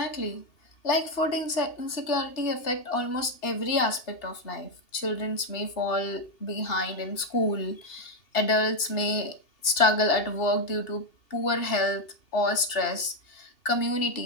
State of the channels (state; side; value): late; right; 2.8 ms